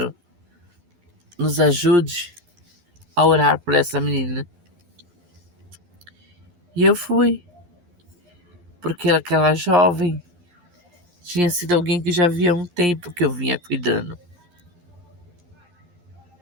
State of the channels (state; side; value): late; left; 11 ms